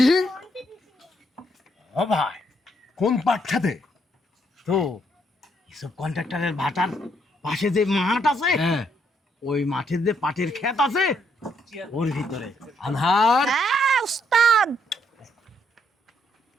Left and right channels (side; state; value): both; normal; correlation 0.73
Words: ও ভাই, কোন পাট খেতে? তো এসব কন্ট্রাক্টরের ভাটার পাশে যে মাঠ আছে, হ্যাঁ, ওই মাঠের যে পাটের ক্ষেত আছে ওর ভিতরে। আনহার হ্যাঁ ওস্তাদ,